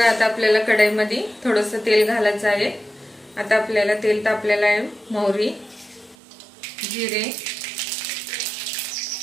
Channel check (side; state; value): left; drops out; at 6.2 s